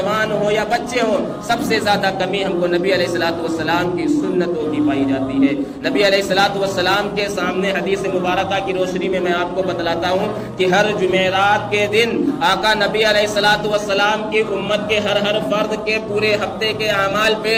ہو یا بچے ہو, سب سے زیادہ کمی ہم کو نبی علیہ الصلوۃ والسلام کی سنتوں کی پائی جاتی ہے. نبی علیہ الصلوۃ والسلام کے سامنے حدیث مبارکہ کی روشنی میں آپ کو بتلاتا ہوں کہ ہر جمعرات کے دن آقا نبی علیہ الصلوۃ والسلام کی امت کے ہر فرد کے پورے ہفتے کے اعمال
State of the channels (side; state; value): both; identical; correlation 1.00